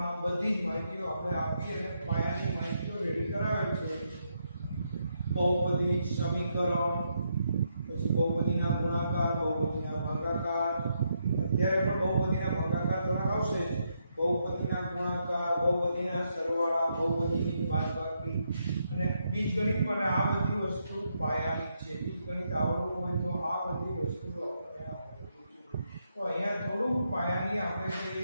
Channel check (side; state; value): both; inverted; correlation -0.79